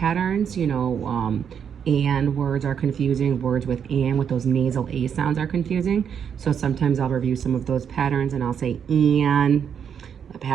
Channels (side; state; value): left; quieter; 7.7 dB